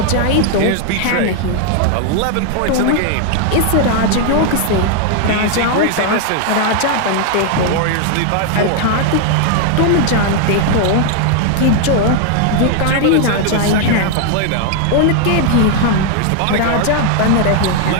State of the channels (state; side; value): different; both; correlation 0.00